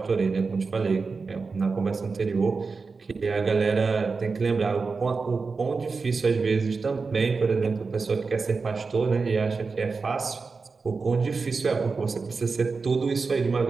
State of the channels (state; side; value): quieter; left; 4.5 dB